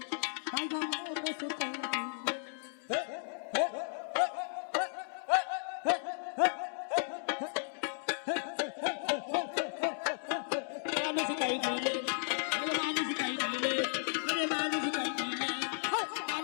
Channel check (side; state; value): right; silent; digital silence